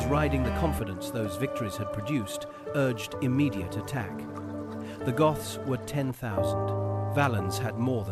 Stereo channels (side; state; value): both; identical; correlation 1.00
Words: riding the confidence those victories had produced, urged immediate attack. The Goths were 10,000. Valens had more